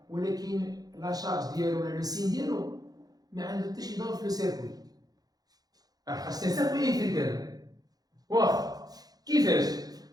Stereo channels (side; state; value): left; late; 0.19 ms